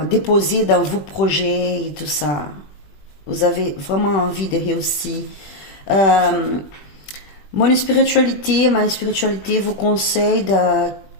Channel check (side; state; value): right; late; 20 ms